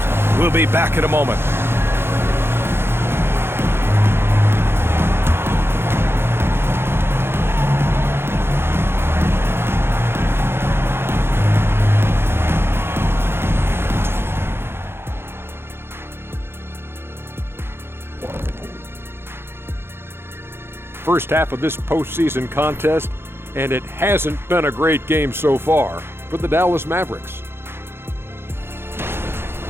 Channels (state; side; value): late; left; 0.11 ms